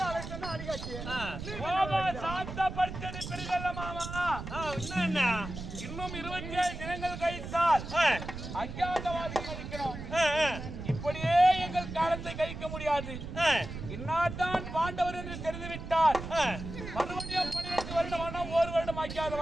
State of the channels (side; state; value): right; noise; rumble, 8 dB below the sound